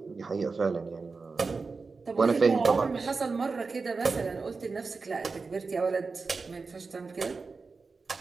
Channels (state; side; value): quieter; left; 4.3 dB